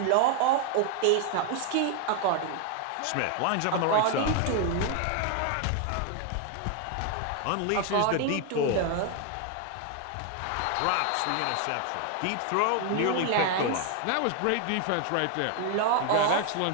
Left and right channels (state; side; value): different; both; correlation 0.00